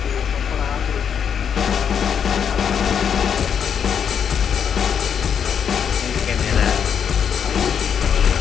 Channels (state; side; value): quieter; right; 7.7 dB